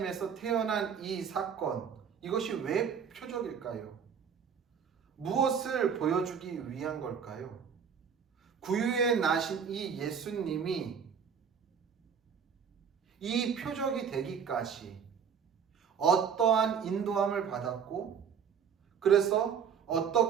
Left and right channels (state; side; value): quieter; left; 7.2 dB